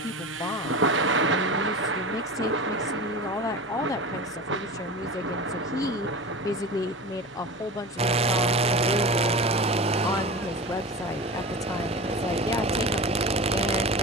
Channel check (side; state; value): both; normal; correlation 0.30